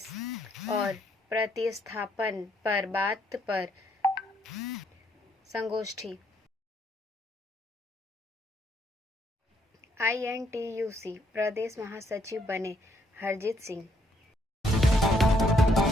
और प्रतिस्थापन पर बात पर संगोष्ठी। INTUC प्रदेश महासचिव बने हरजीत सिंह।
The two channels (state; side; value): normal; both; correlation 0.71